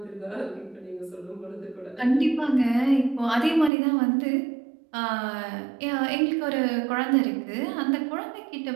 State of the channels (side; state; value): left; drops out; at 3.7 s